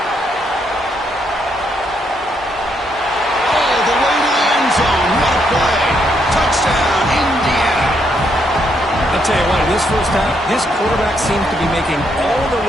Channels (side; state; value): both; normal; correlation 0.75